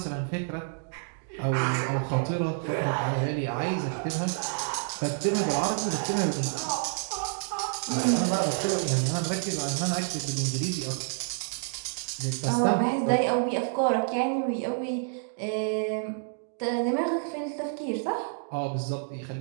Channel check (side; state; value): left; silent; digital silence